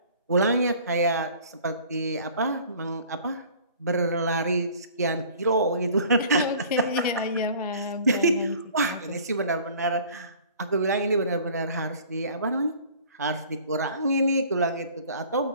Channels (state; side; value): inverted; both; correlation -0.49